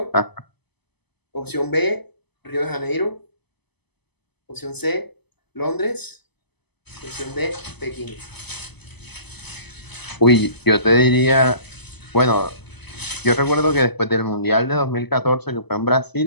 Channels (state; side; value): late; right; 0.99 ms